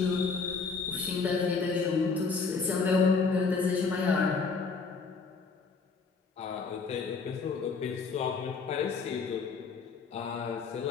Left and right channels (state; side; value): quieter; right; 4.8 dB